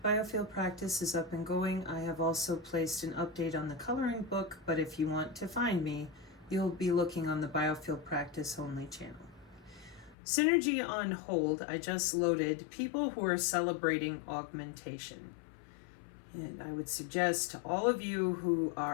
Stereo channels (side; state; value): right; drops out; at 10.2 s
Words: biofield practice is up and going. I have also placed an update on the coloring book, but if you want to find me, you'll be looking on the biofield practice only channel. Synergy on hold, I just loaded people who are celebrating augmentation. And I would suggest to all of you who